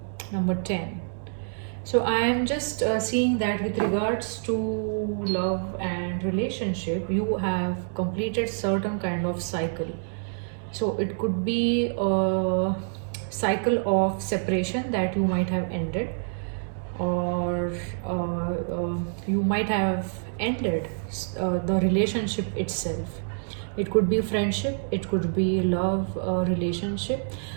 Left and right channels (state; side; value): silent; left; digital silence